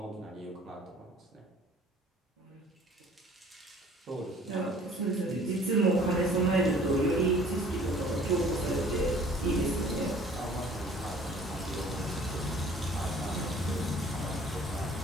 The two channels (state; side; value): normal; both; correlation 0.52